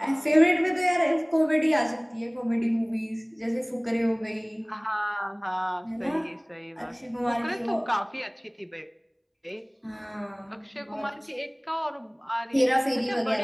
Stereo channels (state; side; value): identical; both; correlation 1.00